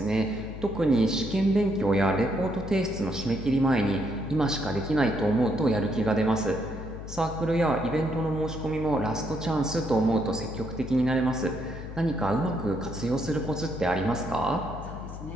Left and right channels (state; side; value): noise; left; hum, 10 dB below the sound